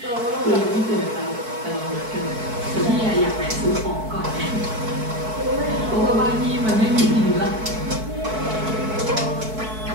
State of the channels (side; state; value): left; late; 4.6 ms